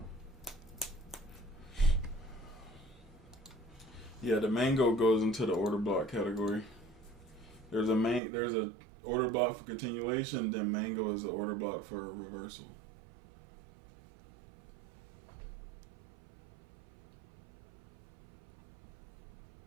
Yeah, the mango goes into the order block category. There's a order block for continuation, then mango is the order block for reversal.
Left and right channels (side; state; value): left; drops out; at 8.2 s